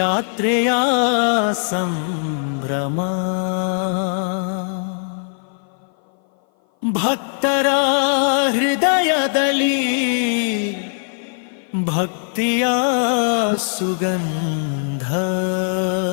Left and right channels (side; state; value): right; silent; 57 dB below the other